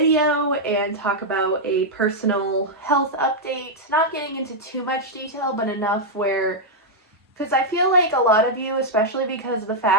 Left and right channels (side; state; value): both; normal; correlation -0.05